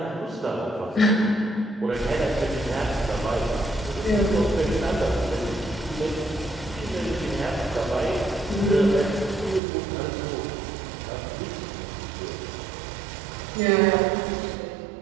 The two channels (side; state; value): left; drops out; at 9.6 s